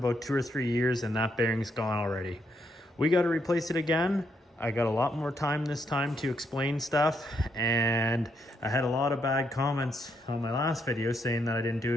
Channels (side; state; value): both; normal; correlation 0.77